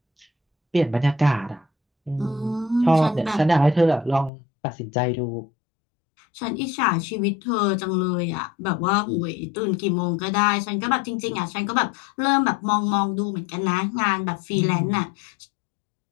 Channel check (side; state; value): right; drops out; at 4.3 s